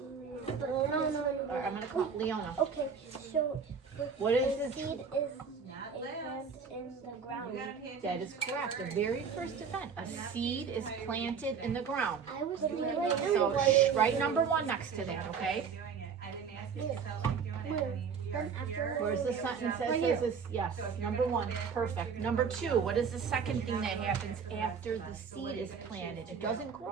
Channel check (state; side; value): quieter; left; 6.3 dB